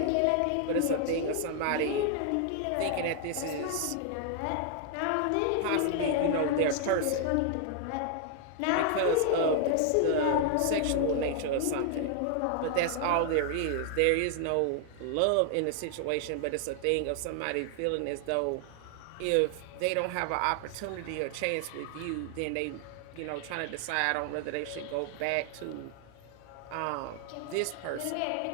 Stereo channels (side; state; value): both; different; correlation 0.00